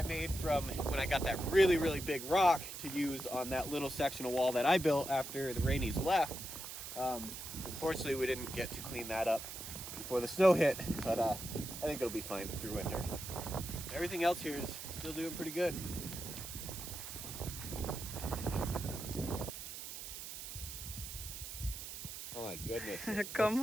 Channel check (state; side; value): noise; right; hiss, 9 dB below the sound